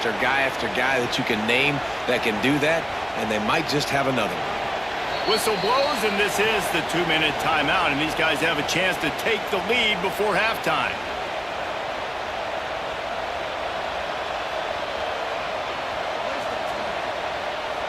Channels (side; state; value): both; identical; correlation 1.00